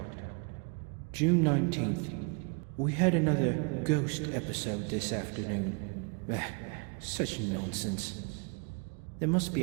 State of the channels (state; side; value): quieter; left; 34.3 dB